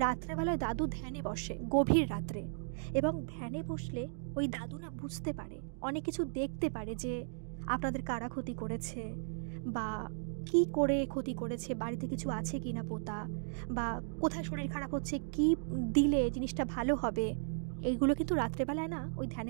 রাত্রেবেলায় দাদু ধ্যানে বসে, গভীর রাত্রে, এবং ধ্যানে বসলে ওই দাদু না বুঝতে পারে, অনেক কিছু দেখতে পারে, যে আপনাদের কারা ক্ষতি করেছে বা কি করে ক্ষতি করেছে, বাড়িতে কিছু আছে কি না পোতা, বা কোথায় শরীর খারাপ হচ্ছে, কি দিলে জিনিসটা ভালো হবে, এইগুলো কিন্তু রাত্রেবেলায় না ওই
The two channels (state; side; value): silent; left; digital silence